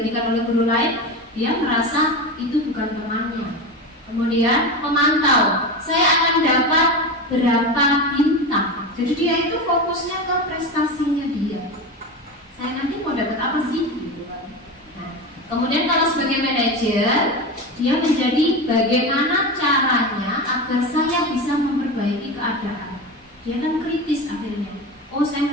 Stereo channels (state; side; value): normal; both; correlation 0.23